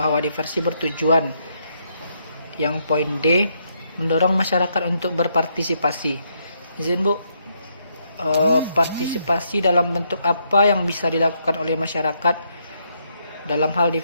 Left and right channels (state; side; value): inverted; both; correlation -0.75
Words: diversi bertujuan, yang poin D, mendorong masyarakat untuk berpartisipasi. Izin Bu, partisipasi dalam bentuk apa yang bisa dilakukan oleh masyarakat dalam hal